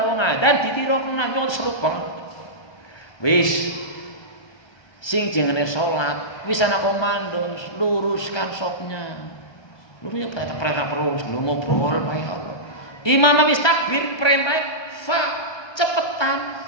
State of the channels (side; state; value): right; late; 1.2 ms